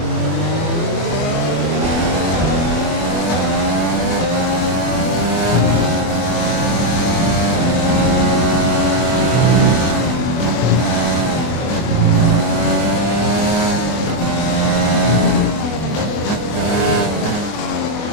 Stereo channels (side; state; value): right; late; 24 ms